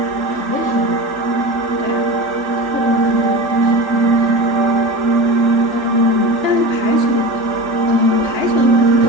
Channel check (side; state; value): left; late; 3.4 ms